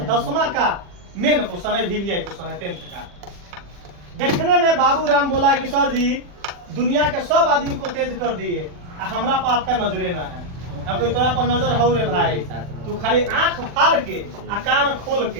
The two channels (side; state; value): left; late; 40 ms